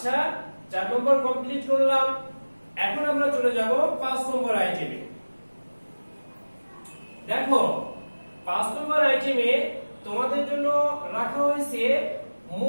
4 নম্বর কমপ্লিট করলাম। এখন আমরা চলে যাব 5 নম্বর আইটেমে। দেখো 5 নম্বর আইটেমে তোমাদের জন্য রাখা হয়েছে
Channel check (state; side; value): inverted; both; correlation -1.00